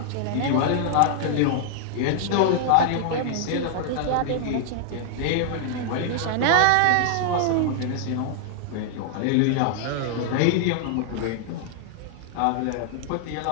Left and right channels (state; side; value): different; both; correlation -0.01